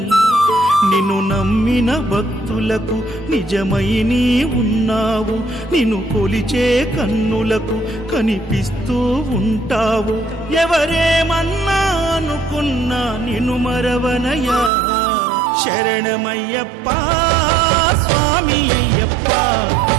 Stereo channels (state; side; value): drops out; left; at 14.7 s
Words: నిన్ను నమ్మిన భక్తులకు నిజమై నీ ఉన్నావు, నిన్ను కొలిచే కన్నులకు కనిపిస్తూ ఉంటావు. ఎవరేమన్నా అనుకున్నా నిన్ను మరవనయ్యా. శరణమయ్యప్ప స్వామి అయ్యప్ప,